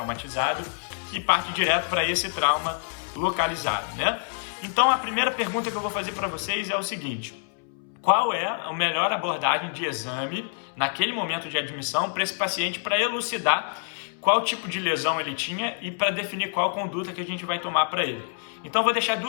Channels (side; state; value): right; silent; 61 dB below the other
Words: e parte direto para esse trauma localizado, né? Então a primeira pergunta que eu vou fazer para vocês é o seguinte: qual é a melhor abordagem de exame naquele momento de admissão para esse paciente para elucidar qual tipo de lesão ele tinha e para definir qual conduta que a gente vai tomar para ele? Então vou deixar